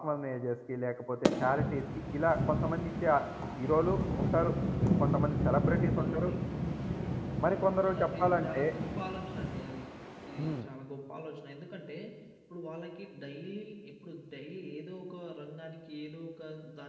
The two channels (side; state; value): both; identical; correlation 1.00